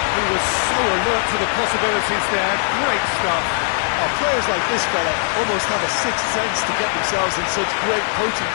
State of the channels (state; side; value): silent; right; digital silence